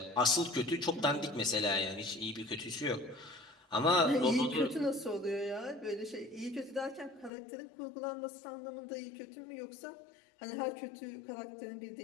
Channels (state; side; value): drops out; right; at 7.3 s